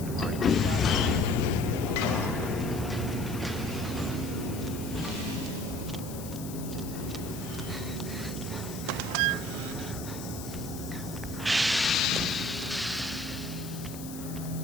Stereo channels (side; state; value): left; noise; hiss, 13 dB below the sound